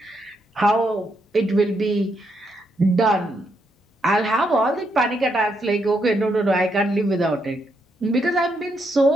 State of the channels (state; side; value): normal; both; correlation 0.78